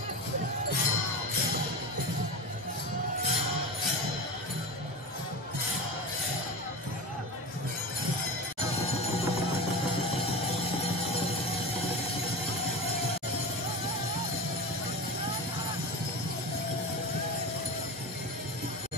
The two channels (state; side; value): normal; both; correlation 0.27